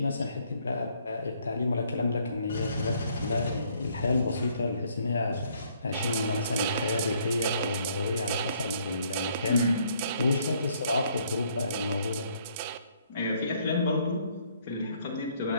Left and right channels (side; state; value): both; inverted; correlation -0.65